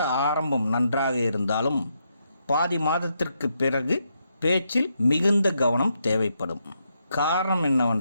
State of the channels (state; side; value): inverted; both; correlation -0.80